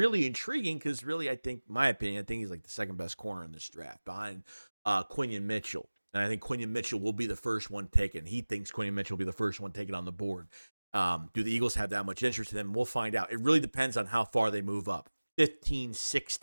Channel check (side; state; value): both; inverted; correlation -1.00